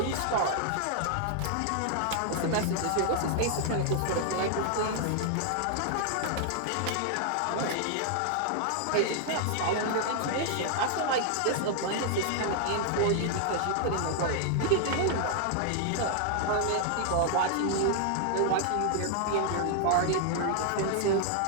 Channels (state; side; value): different; both; correlation 0.00